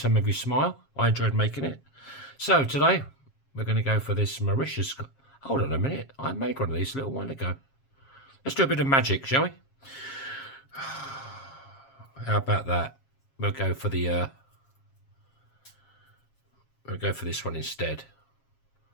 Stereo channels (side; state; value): right; late; 7.4 ms